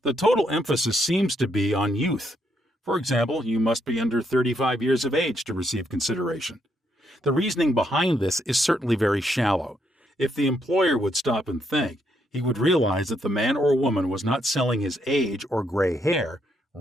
The total emphasis seems to be on youth. For example, you must be under 35 years of age to receive consideration. The reasoning behind this is certainly very shallow. If the employer would stop and think, he would realize that the man or woman was not selling his age or gray hair.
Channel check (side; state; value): both; normal; correlation 0.76